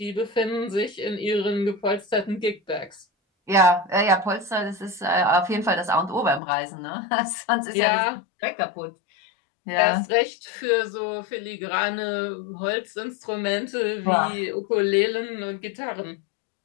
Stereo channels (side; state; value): right; drops out; at 6.4 s